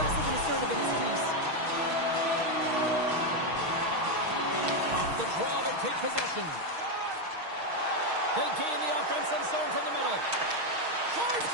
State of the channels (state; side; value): late; left; 6.4 ms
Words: and assertive in his crease. Off the draw, they take possession. They gain the offensive zone from the middle. Charge